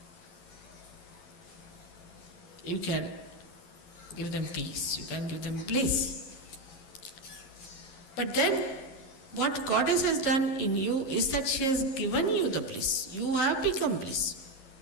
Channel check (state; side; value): late; right; 11 ms